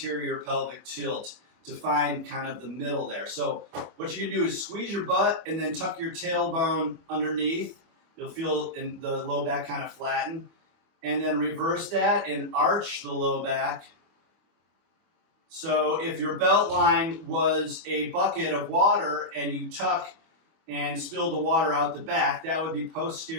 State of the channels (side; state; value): left; late; 25 ms